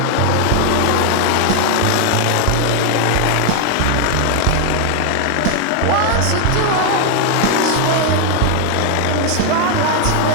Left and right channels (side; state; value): both; different; correlation 0.00